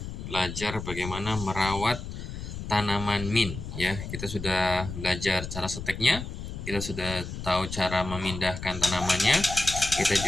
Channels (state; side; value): noise; left; rumble, 8 dB below the sound